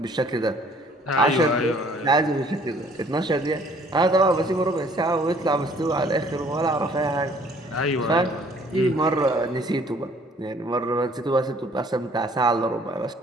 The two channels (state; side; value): normal; both; correlation 0.58